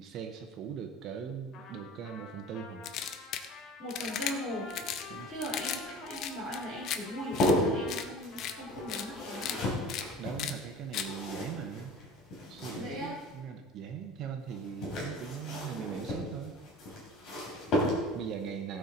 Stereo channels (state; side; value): normal; both; correlation 0.40